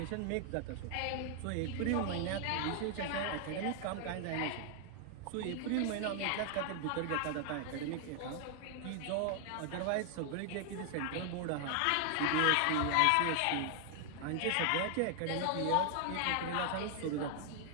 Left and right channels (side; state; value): both; different; correlation 0.00